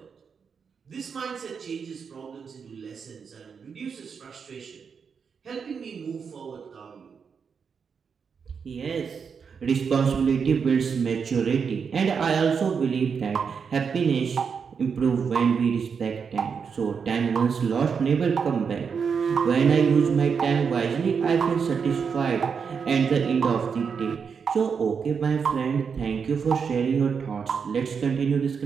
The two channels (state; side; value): quieter; left; 6.2 dB